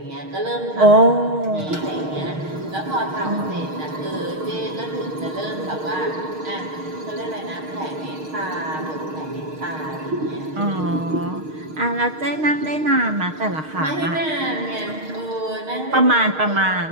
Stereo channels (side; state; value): left; late; 6.5 ms